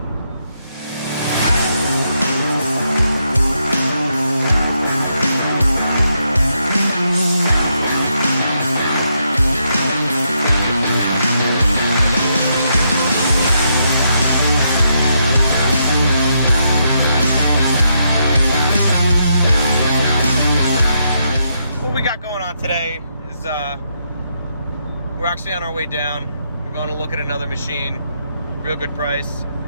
What we got going on today is we're actually on our way down. We're going to look at another machine. Real good price.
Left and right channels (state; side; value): inverted; both; correlation -0.79